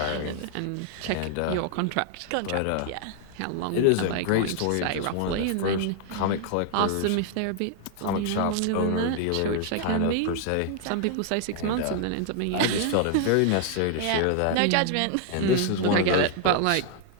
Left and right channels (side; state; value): both; different; correlation 0.00